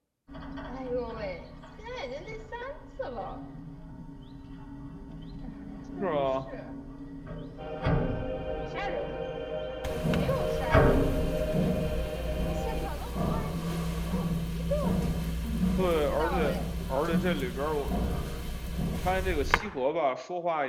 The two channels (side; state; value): both; identical; correlation 1.00